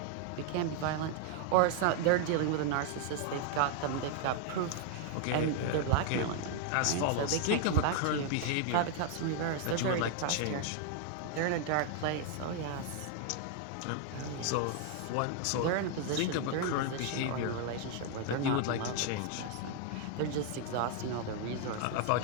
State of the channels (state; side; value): different; both; correlation 0.00